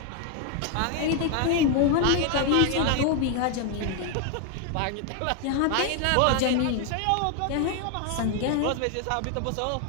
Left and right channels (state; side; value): different; both; correlation 0.01